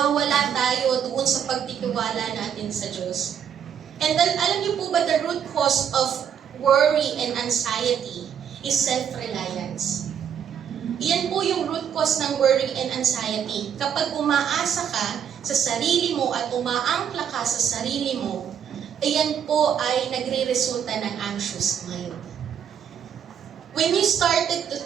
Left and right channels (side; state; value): left; quieter; 8.4 dB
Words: tayo doon sa pagtitiwala natin sa Diyos. And then, alam niyo po ba, the root cause of worry and anxiety is self-reliance. Iyan po yung root cause ng worry and anxiety. Kapag umaasa ka sa sarili mo at umaangkla ka sa sarili mo, iyan po ay nagre-resulta ng anxious mind. When you started to